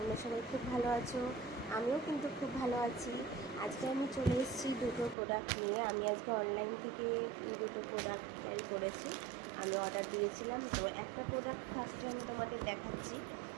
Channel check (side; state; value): left; drops out; at 5.2 s